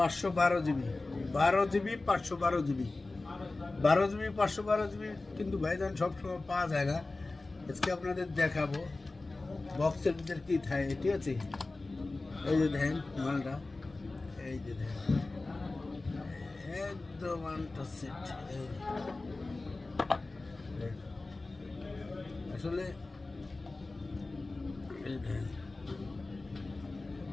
GB, 12 GB, 512 GB, 12 GB, 512 GB। কিন্তু ভাইজান সবসময় পাওয়া যায় না। আজকে আপনাদের দেখাবো বক্সের ভিতরে কী থাকে, ঠিক আছে? এই যে দেখেন মালটা, এই যে দেখেন একদম আনটাচড। আসলে এই দেখেন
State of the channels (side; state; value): right; quieter; 3.3 dB